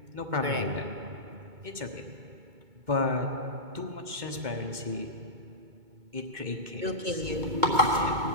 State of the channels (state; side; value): late; left; 2.2 ms